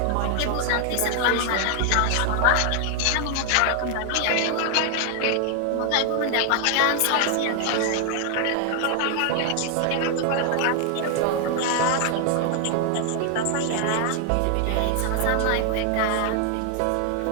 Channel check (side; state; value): both; different; correlation 0.00